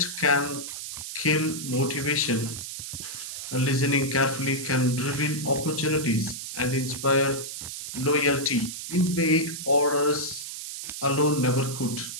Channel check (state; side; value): noise; right; hiss, 8 dB below the sound